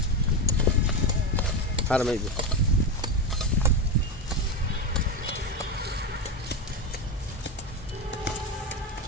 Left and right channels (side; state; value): both; normal; correlation 0.16